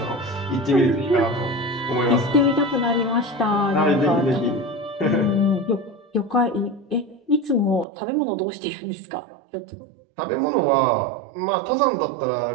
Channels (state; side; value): drops out; left; at 7.9 s